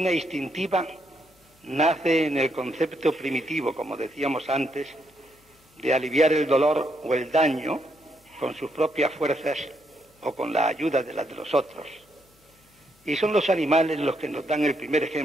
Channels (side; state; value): both; normal; correlation 0.77